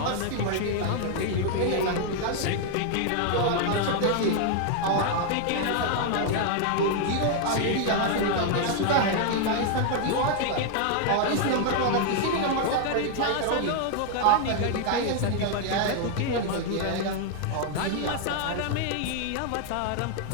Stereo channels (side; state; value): both; different; correlation 0.00